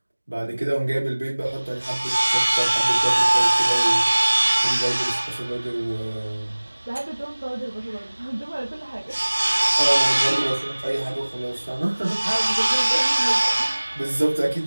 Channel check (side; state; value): both; inverted; correlation -1.00